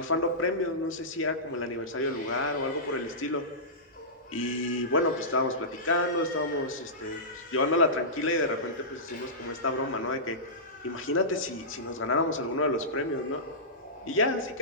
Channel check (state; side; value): normal; both; correlation -0.18